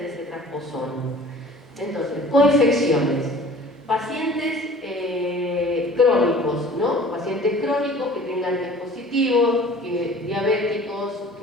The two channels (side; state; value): both; normal; correlation 0.47